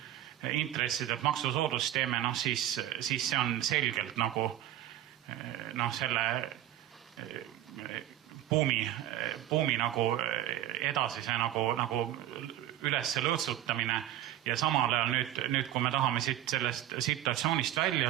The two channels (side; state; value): left; quieter; 12.8 dB